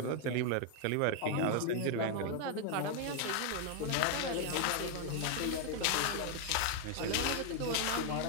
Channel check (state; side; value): different; both; correlation 0.00